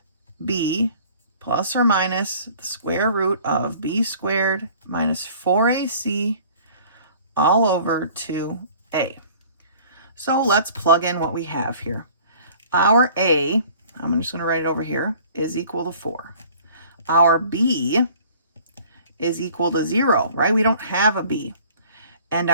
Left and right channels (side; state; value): both; inverted; correlation -0.50